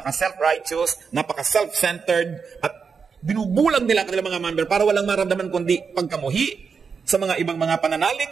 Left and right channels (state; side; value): quieter; left; 5.7 dB